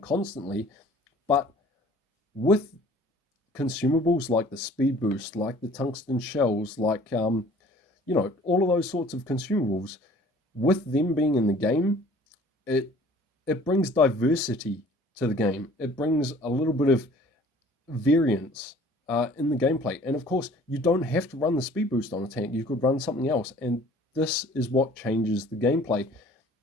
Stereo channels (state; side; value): normal; both; correlation 0.51